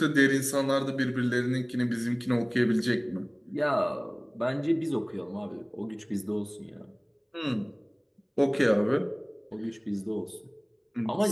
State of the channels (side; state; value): both; identical; correlation 1.00